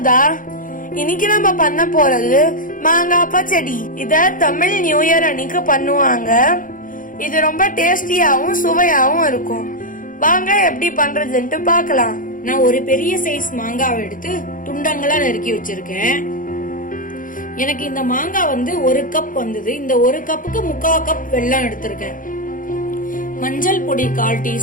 இன்னைக்கு நம்ம பண்ண போறது மாங்காய் பச்சடி. இத தமிழ் நியூ இயர் அன்னைக்கு பண்ணுவாங்க. இது ரொம்ப டேஸ்டியாவும் சுவையாவும் இருக்கும். வாங்க எப்படி பண்றதுன்னு பார்க்கலாம். நான் ஒரு பெரிய சைஸ் மாங்காவை எடுத்து துண்டங்களா நறுக்கி வச்சிருக்கேன். எனக்கு இந்த மாங்காய் ஒரு கப் வந்தது. இந்த ஒரு கப்புக்கு 3/4 கப் வெல்லம் எடுத்திருக்கேன். மஞ்சள் பொடி 1/4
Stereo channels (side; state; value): right; late; 0.39 ms